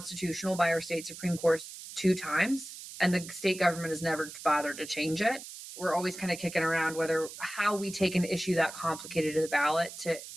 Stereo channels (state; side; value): noise; right; hiss, 12 dB below the sound